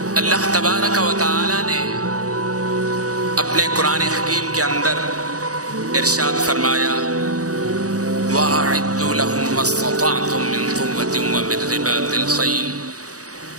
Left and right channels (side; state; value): left; late; 0.66 ms